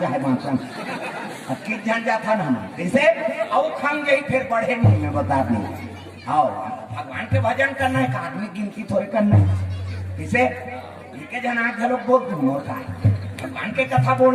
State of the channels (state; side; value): identical; both; correlation 1.00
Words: चाहे मांसन की जन जाता ना जैसे औ खान गई फिर बढ़े नहीं मैं बता दी आओ भगवान के भजन करना है आदमी गिनती थोड़े करना है जैसे के जन आग लोग बहुत मोर का भगवान के कथा